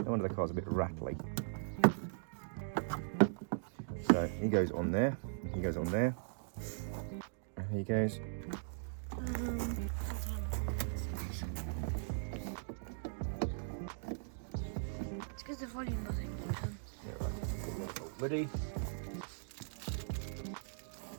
no wonder the car's a bit rattly. So he goes on there, he goes on there, and he goes. It's because the volume doesn't keep on. Yeah, right. Ready?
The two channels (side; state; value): left; silent; digital silence